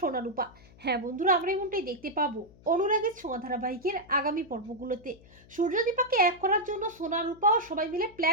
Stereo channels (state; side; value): noise; left; hum, 24 dB below the sound